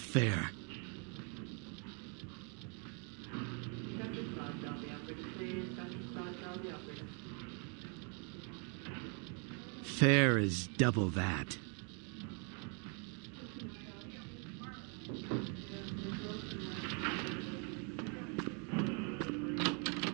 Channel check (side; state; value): left; quieter; 37.3 dB